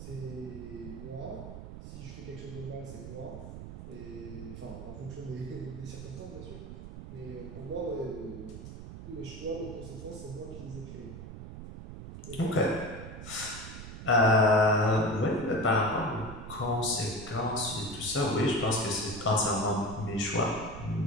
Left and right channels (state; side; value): noise; right; rumble, 11 dB below the sound